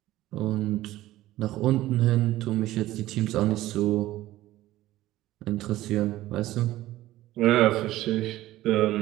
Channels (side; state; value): left; quieter; 15.7 dB